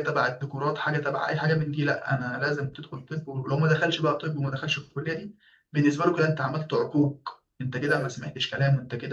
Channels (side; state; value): both; identical; correlation 1.00